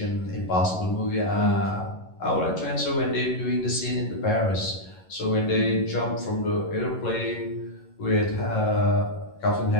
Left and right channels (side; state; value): right; late; 11 ms